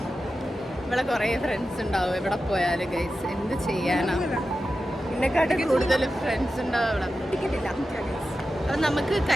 ഇവിടെ കുറേ ഫ്രണ്ട്സ് ഉണ്ടാവും എവിടെ പോയാലും ഗൈസ്. എന്ത് ചെയ്യാനാ, എന്നെക്കാട്ടും കൂടുതൽ ഫ്രണ്ട്സ് ഉണ്ടാവും ഇവിടെ. ടിക്കറ്റില്ല. അപ്പം നമുക്ക്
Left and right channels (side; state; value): both; normal; correlation 0.92